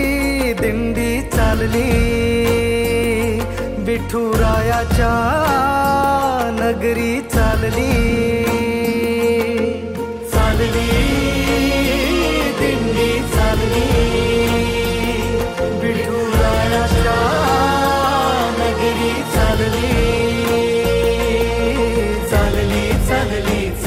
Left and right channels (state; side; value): identical; both; correlation 1.00